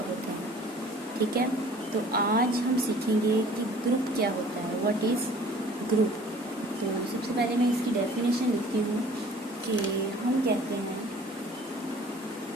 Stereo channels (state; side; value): normal; both; correlation 0.50